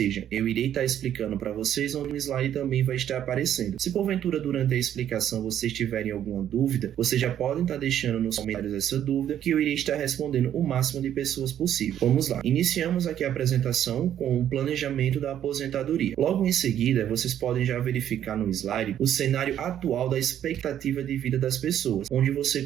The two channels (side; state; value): left; quieter; 10.5 dB